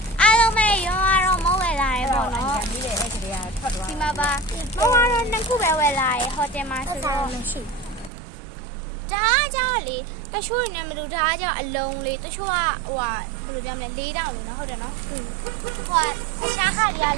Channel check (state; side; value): drops out; left; at 8.1 s